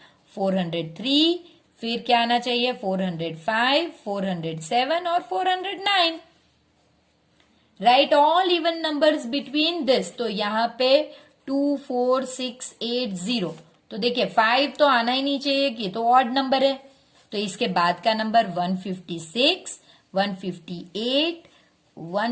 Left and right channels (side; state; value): both; identical; correlation 1.00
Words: 403, फिर क्या आना चाहिए 405, 407 और 409। Right all even numbers between this. तो यहाँ पे 2, 4, 6, 8, 0। तो देखिए 5 तो आना ही नहीं चाहिए कि तो ऑड नंबर है। तो इसके बाद का नंबर 156, 158,